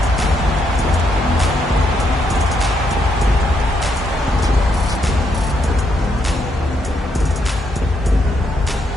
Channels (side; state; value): both; normal; correlation 0.77